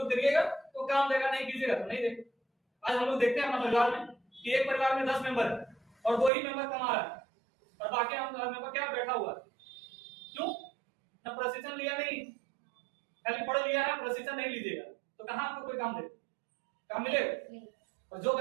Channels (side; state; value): left; drops out; at 6.3 s